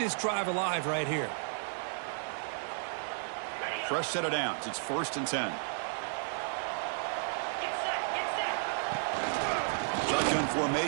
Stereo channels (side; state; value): left; silent; digital silence